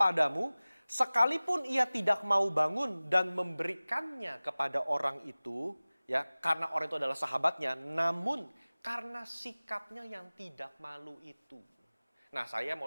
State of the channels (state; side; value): inverted; both; correlation -0.99